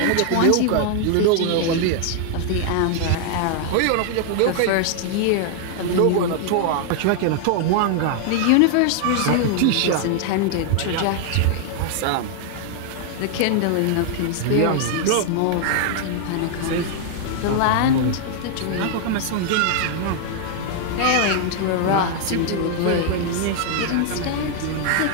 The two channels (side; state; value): both; different; correlation 0.00